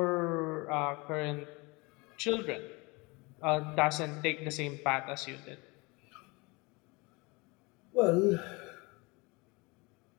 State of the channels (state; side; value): quieter; right; 26.4 dB